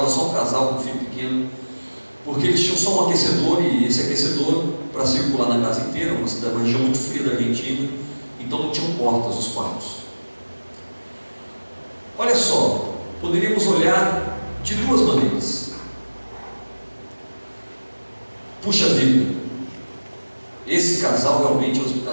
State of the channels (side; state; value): both; inverted; correlation -1.00